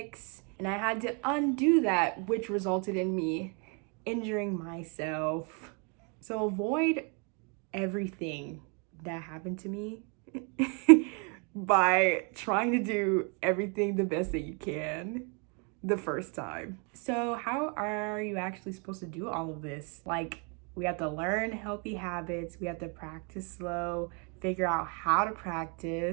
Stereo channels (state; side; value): quieter; left; 35.6 dB